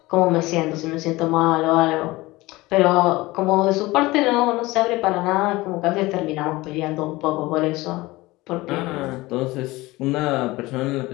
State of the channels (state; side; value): quieter; right; 20.3 dB